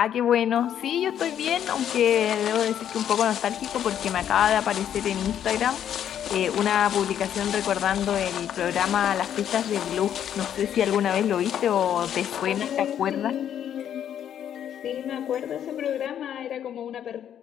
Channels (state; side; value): quieter; right; 9.8 dB